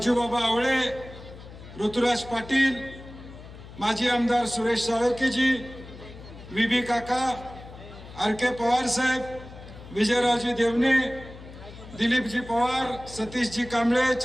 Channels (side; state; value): left; noise; hum, 16 dB below the sound